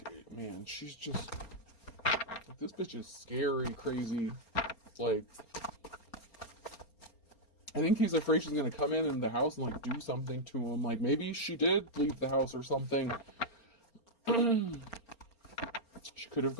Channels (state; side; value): late; right; 4.3 ms